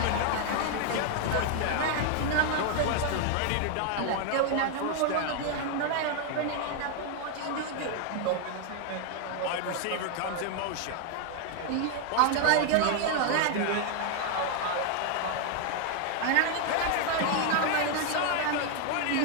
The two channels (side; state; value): both; different; correlation 0.00